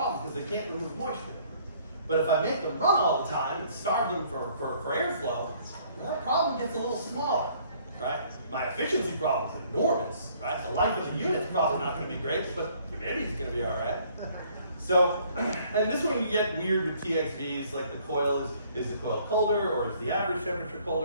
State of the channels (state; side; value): inverted; both; correlation -0.61